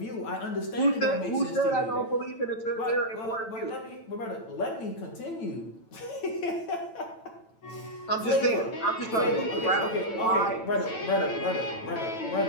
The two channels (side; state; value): right; late; 9.0 ms